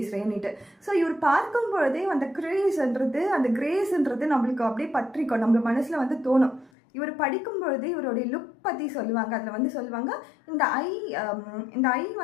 ஸோ இவர் பார்க்கும் பொழுதே அந்த கிரேஸ்ன்றது நம்மளுக்கு அப்படியே பற்றிக்கும், நம்ம மனசில் தோணும். இவர் படிக்கும் பொழுது இவருடைய லுக் பற்றி சொல்லுவாங்க. அதில் சொல்லுவாங்க, இந்த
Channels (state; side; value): drops out; right; at 6.7 s